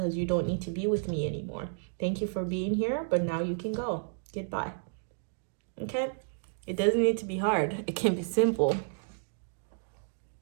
you don't need to be with me anymore. Thank you for being here, but now you can go. Goodbye. Okay? It doesn't need to be hard. It can be simple.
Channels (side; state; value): left; silent; digital silence